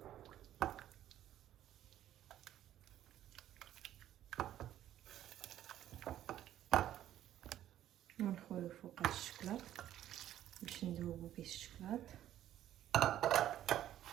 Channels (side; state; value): left; quieter; 12.1 dB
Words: ونخويو فوق الشكلاط باش نذوبو به الشكلاط.